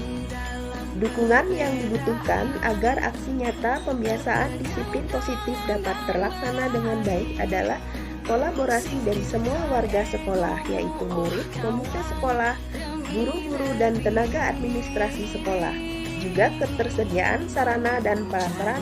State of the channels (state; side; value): identical; both; correlation 1.00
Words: Dukungan yang dibutuhkan agar aksi nyata pembiasaan disiplin positif dapat terlaksana dengan baik adalah kolaborasi dari semua warga sekolah, yaitu murid, komite sekolah, guru-guru, dan tenaga administrasi sekolah. Juga ketersediaan sarana dan